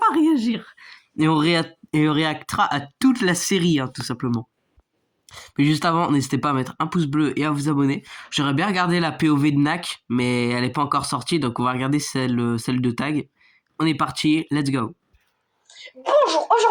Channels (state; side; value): identical; both; correlation 1.00